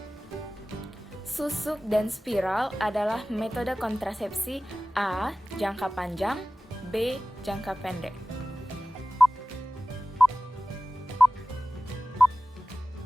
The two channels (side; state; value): both; normal; correlation 0.96